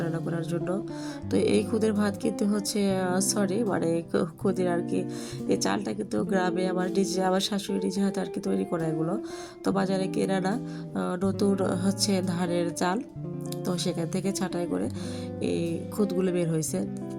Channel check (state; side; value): identical; both; correlation 1.00